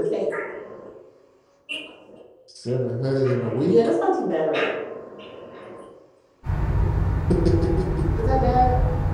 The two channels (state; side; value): identical; both; correlation 1.00